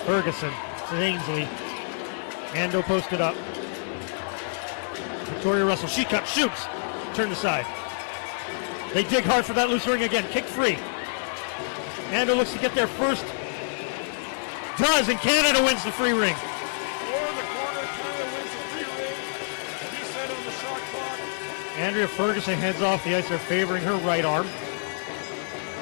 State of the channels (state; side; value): silent; right; digital silence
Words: Ferguson, Ainsley, Ando posted up. Victoria Russell, she cuts, shoots, turned aside. They dig hard for that loose ring again, kicked free. Ando looks to get there first. Does, and Canada wins the free ring. 4 in the corner, Canada wins the free ring. Reset on the shot clock. Andrea Ferguson heads off the ice, they're favoring her right arm. To